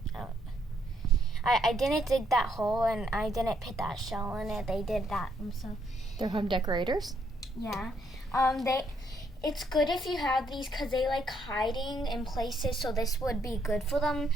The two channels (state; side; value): normal; both; correlation 0.73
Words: I didn't dig that hole and I didn't put that shell in it. They did that themselves. They're home decorators? Yeah. It's good if you have these because they like hiding in places, so this would be good for them.